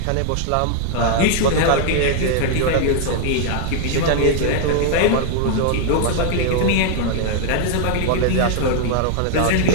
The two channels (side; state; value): both; different; correlation 0.00